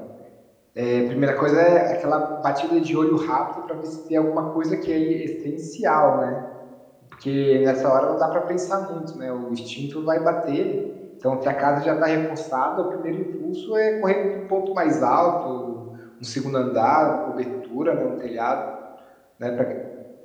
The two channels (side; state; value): both; identical; correlation 1.00